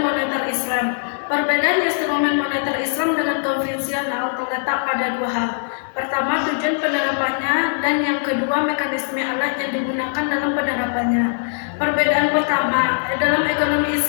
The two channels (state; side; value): silent; right; 65 dB below the other